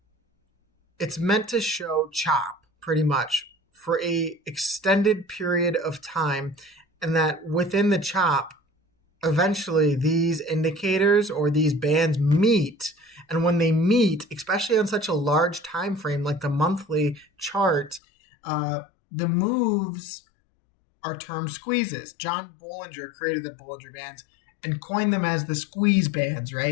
it's meant to show chop pretty much for a extended period of time, and that within the chop, eventually these indicators or these bands meet. And when they meet, especially on such a large time frame like the monthly chart, the moves are termed squeezes. John Bollinger created the Bollinger Bands and coined them as the squeeze bands,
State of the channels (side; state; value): right; drops out; at 18.0 s